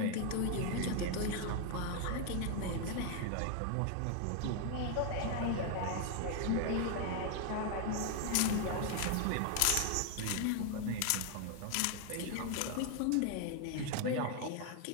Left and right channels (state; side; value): different; both; correlation 0.00